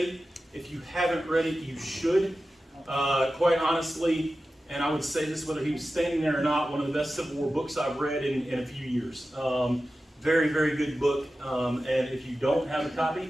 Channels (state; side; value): normal; both; correlation 0.94